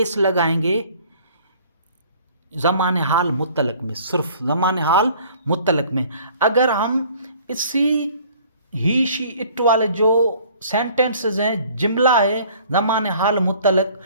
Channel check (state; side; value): inverted; both; correlation -0.53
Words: लगाएंगे, ज़माने हाल मुत्तलक में, सिर्फ ज़माने हाल मुत्तलक में। अगर हम इसी ही, शी, इट वाले जो सेंटेंसेस हैं, जुमला है ज़माने हाल मुत्तलक,